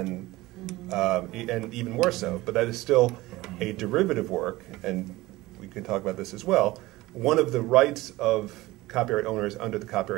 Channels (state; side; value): quieter; left; 19.0 dB